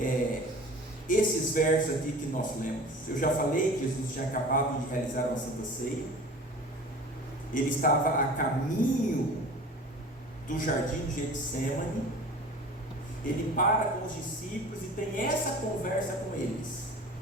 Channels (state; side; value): normal; both; correlation 0.41